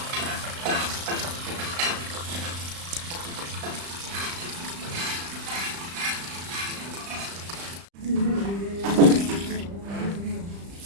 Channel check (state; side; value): late; left; 35 ms